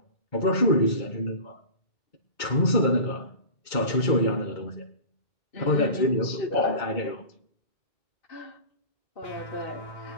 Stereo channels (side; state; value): right; late; 2.3 ms